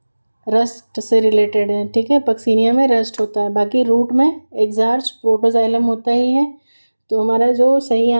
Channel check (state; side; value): inverted; both; correlation -1.00